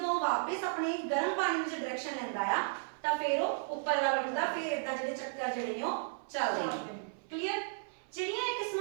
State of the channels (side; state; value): left; silent; 55 dB below the other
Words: ਉਹ ਵਾਪਸ ਆਪਣੇ ਗਰਮ ਪਾਣੀ ਵਿੱਚ ਡਾਇਰੈਕਸ਼ਨ ਲੈਂਦਾ ਆ, ਤਾਂ ਫਿਰ ਉਹ ਉੱਪਰ ਵੱਲ ਉੱਠਦਾ, ਫਿਰ ਇਦਾਂ ਜਿਹੜੇ ਚੱਕਰ ਜਿਹੜੇ ਨੇ ਉਹ ਚੱਲਦੇ ਨੇ। ਕਲੀਅਰ? ਜਿਹੜੀਆਂ ਇਹ